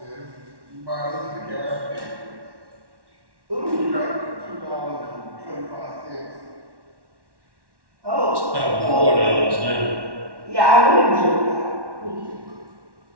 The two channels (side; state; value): left; late; 1.1 ms